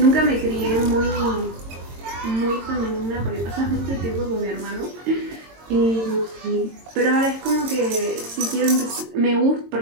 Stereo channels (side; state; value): left; late; 22 ms